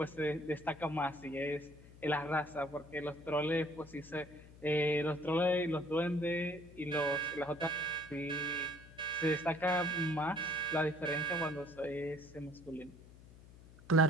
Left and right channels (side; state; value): left; noise; hum, 20 dB below the sound